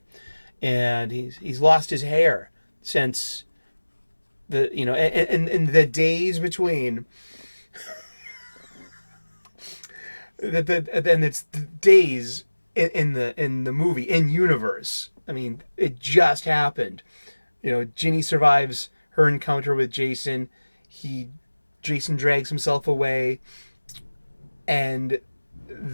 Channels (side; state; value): both; inverted; correlation -1.00